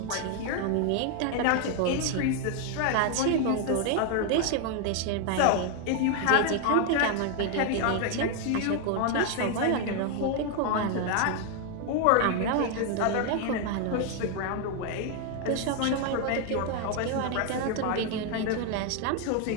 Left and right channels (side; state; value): both; different; correlation 0.01